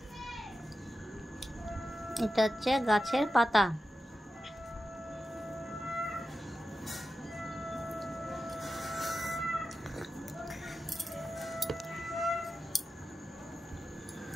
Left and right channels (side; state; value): both; normal; correlation 0.91